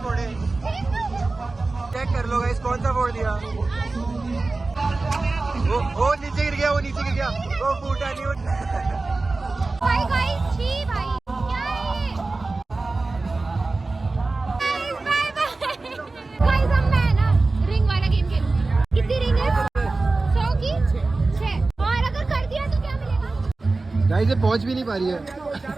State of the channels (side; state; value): left; quieter; 3.5 dB